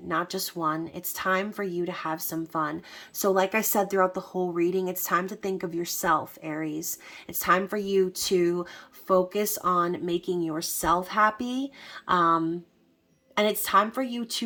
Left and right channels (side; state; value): both; identical; correlation 1.00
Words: not just one. It's time for you to have some fun. So like I said throughout the whole reading, it's time to think of yourself, Aries. It's time for you to focus on making yourself happy. And it's time for you